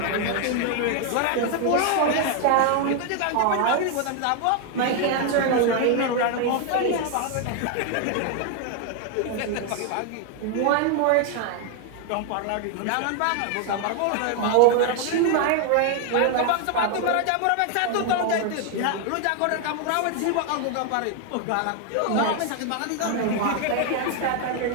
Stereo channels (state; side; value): different; both; correlation 0.00